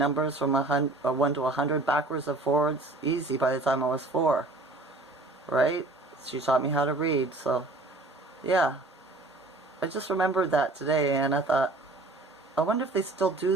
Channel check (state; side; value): quieter; left; 3.1 dB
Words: from 1 to 100 backwards and forwards, easy by the time I was 4. Right? She taught me how to read, so yeah. I just remembered that today, and I thought, I wonder if they still